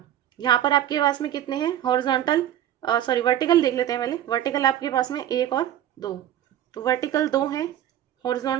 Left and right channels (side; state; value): left; quieter; 11.6 dB